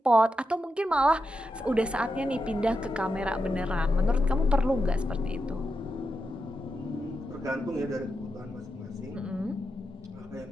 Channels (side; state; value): both; normal; correlation 0.87